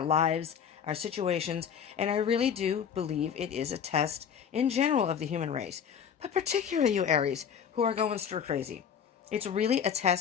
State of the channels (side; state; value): right; quieter; 7.8 dB